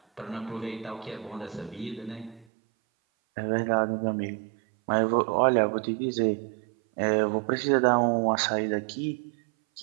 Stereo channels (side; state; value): left; drops out; at 2.5 s